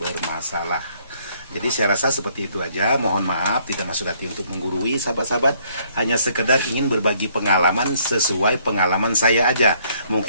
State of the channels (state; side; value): inverted; both; correlation -0.65